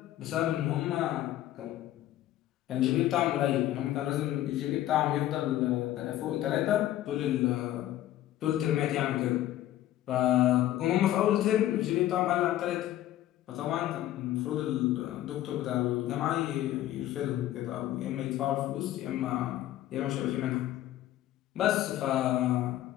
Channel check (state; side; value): quieter; right; 13.6 dB